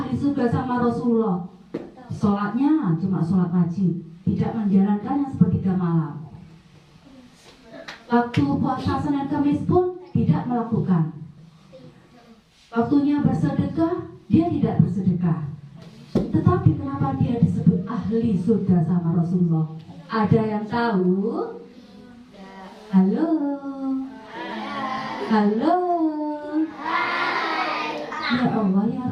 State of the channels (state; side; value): identical; both; correlation 1.00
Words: surga sama Rasulullah? Sholatnya cuma sholat wajib, tidak menjalankannya sepertiga malam. Waktu puasa Senin Kamis pun tidak melakukan. Waktunya bersedekah, dia tidak bersedekah. Tetapi kenapa dia disebut ahli surga sama Rasulullah? Ada yang tahu? Halo? Halo? Ya Allah, ya